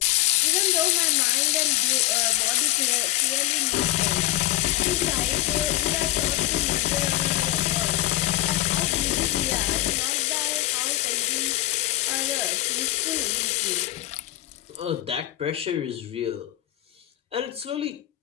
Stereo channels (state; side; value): quieter; right; 15.8 dB